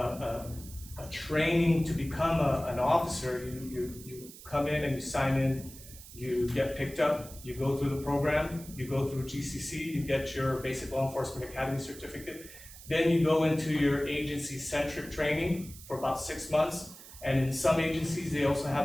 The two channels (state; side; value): noise; right; hiss, 17 dB below the sound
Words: training to become an officer, you come in and you sign in, you get picked up, you go through the program, you go through GCC, you get your Basic Law Enforcement Academy certificate, then you go into your agency-centric training for about 6 months, and in some agencies, they also have